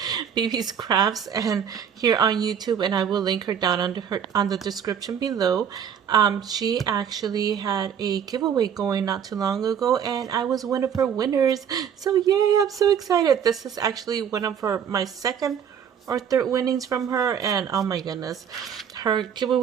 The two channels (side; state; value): left; quieter; 8.2 dB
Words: BB's Crafts, and here on YouTube, and I will link her down on the description below. She actually had a giveaway going not too long ago, and I was one of her winners. So yay! I'm so excited. This is actually one of my second or third winnings from her, and oh my goodness, her